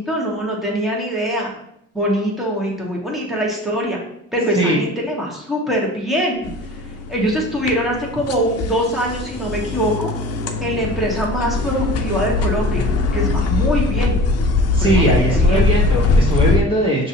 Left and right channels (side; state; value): both; normal; correlation 0.41